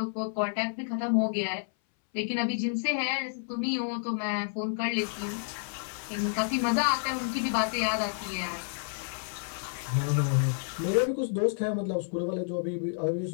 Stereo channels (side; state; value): right; silent; 58 dB below the other